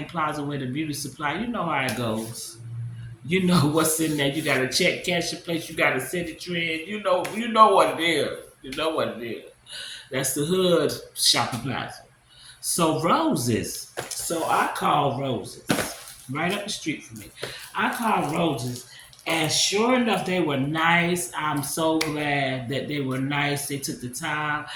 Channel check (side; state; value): both; identical; correlation 1.00